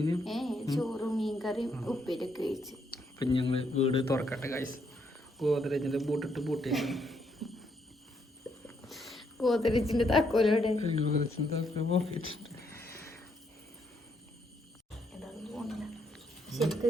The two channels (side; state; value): both; normal; correlation 0.74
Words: ചോറും മീൻകറിയും ഉപ്പേരിയൊക്കെ കഴിച്ചു. അപ്പൊ ഞങ്ങള് വീട് തുറക്കട്ടെ ഗൈസ്. ഗോദ്രേജിന്റെ ബൂട്ടിട്ട് പൂട്ടിയേക്കാണ്. ഗോദ്രേജിന്റെ താക്കോലോടെ ശരിക്ക്